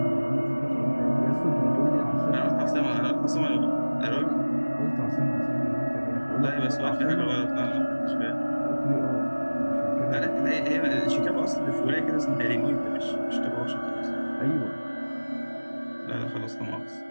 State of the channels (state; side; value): inverted; both; correlation -1.00